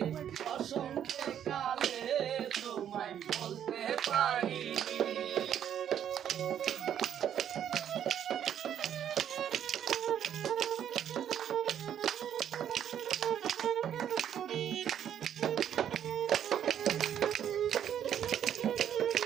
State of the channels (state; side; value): quieter; left; 9.7 dB